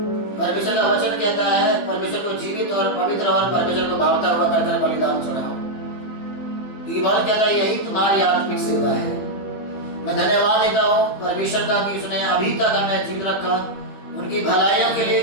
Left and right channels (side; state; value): right; late; 15 ms